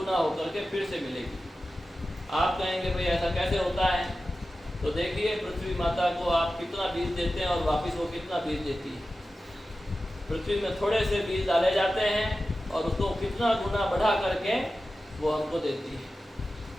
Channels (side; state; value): both; normal; correlation 0.94